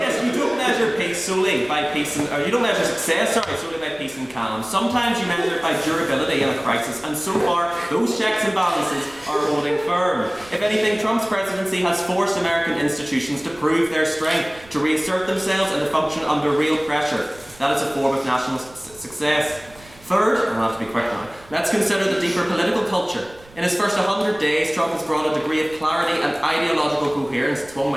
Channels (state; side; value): noise; right; rumble, 24 dB below the sound